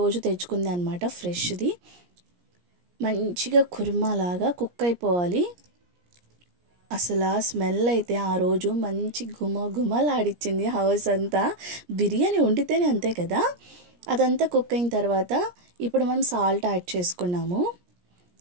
తెచ్చుకుంది అనమాట, ఫ్రెష్ది. మంచిగా కుర్మాలాగా కుక్ అయిపోవాలి. అసలు ఆ స్మెల్ అయితే ఆ రోజు మంచి గుమలాడిచ్చింది హౌస్ అంతా. బిర్యానీ వండితేనే అంతే కదా. అదంతా కుక్ అయిన తర్వాత ఇప్పుడు మనం సాల్ట్ యాడ్ చేసుకున్నాము.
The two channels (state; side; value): late; left; 17 ms